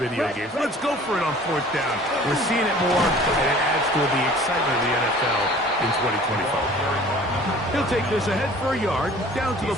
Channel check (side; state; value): both; normal; correlation 0.48